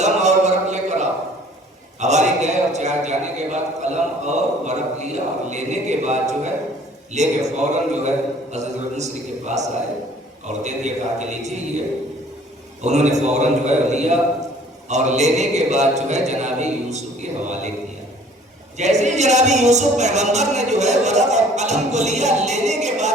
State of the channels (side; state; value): both; normal; correlation 0.54